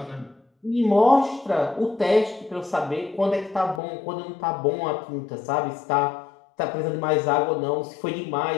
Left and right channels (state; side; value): drops out; right; at 3.8 s